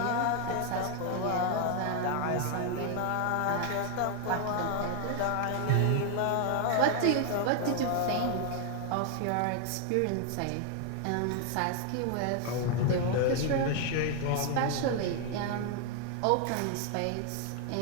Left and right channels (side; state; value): both; different; correlation 0.00